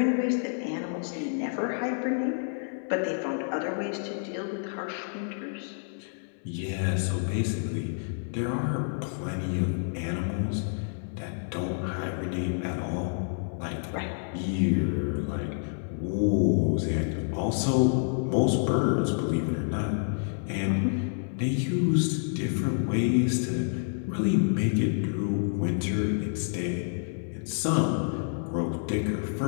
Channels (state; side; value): silent; right; 59 dB below the other